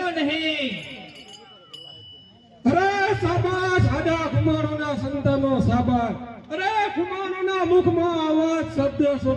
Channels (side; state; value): both; identical; correlation 1.00